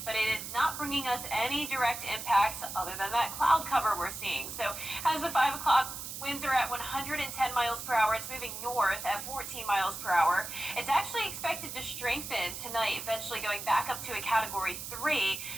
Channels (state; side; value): noise; right; hiss, 8 dB below the sound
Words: but it is not bringing us any direct impacts other than that cloud cover we're seeing. So as of 5 o'clock, winds are at 110 miles per hour. It's moving north at 14 miles per hour. It's actually expected to strengthen tonight, eventually going back up to a Category 3